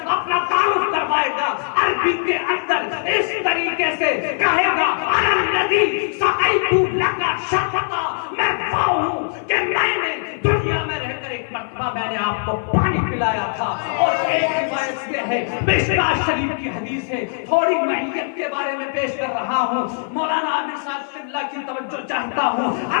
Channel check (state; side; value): silent; right; 55 dB below the other